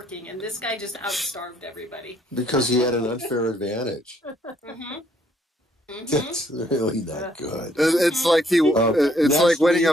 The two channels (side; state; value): both; normal; correlation 0.67